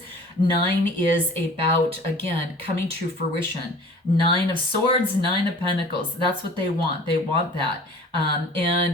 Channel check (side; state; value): both; normal; correlation 0.45